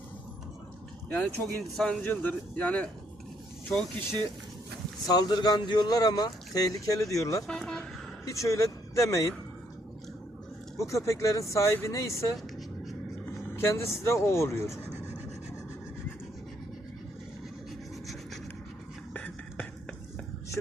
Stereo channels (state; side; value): normal; both; correlation 0.71